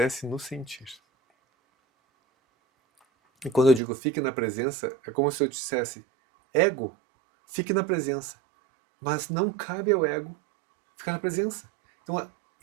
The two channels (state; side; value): drops out; left; at 3.8 s